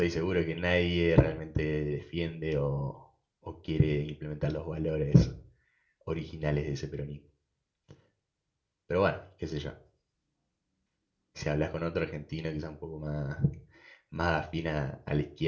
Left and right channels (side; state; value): both; identical; correlation 1.00